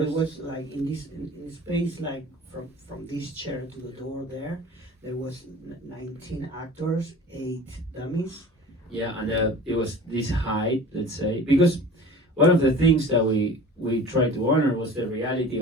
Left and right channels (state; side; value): normal; both; correlation 0.41